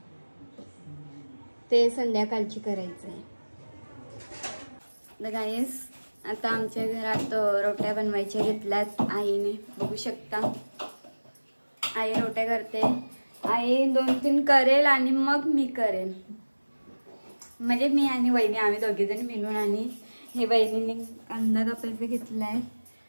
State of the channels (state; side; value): inverted; both; correlation -1.00